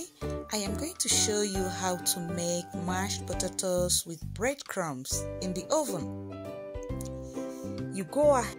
I am going to show you how to make mashed potatoes with breadcrumbs in the oven. You go ahead.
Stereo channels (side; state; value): both; identical; correlation 1.00